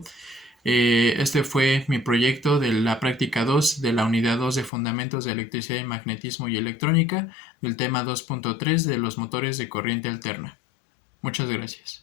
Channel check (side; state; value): right; drops out; at 4.7 s